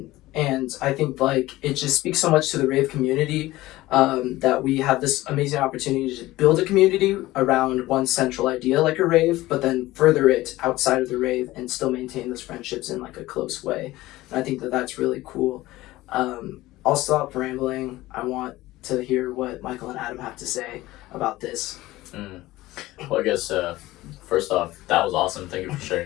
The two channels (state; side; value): quieter; right; 17.6 dB